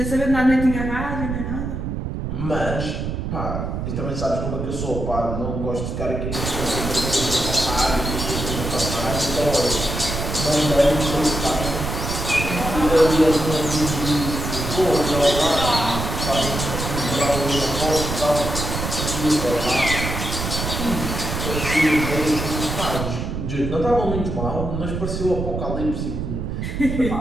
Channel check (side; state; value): right; noise; rumble, 4 dB below the sound